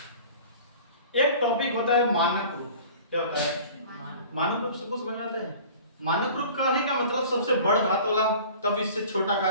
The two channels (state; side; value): inverted; both; correlation -0.43